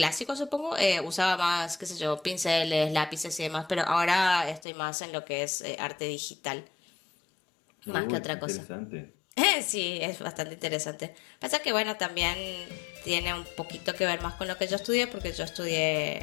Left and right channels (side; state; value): right; drops out; at 4.6 s